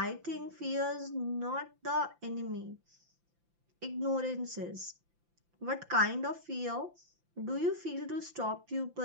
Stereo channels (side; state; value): left; late; 5.8 ms